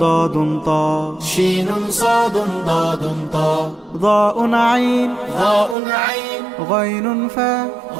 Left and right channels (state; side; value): drops out; left; at 5.8 s